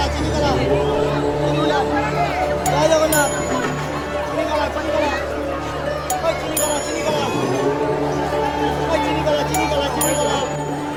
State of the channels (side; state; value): both; identical; correlation 1.00